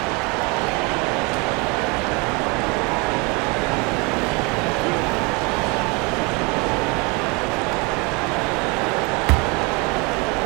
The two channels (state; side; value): quieter; left; 28.8 dB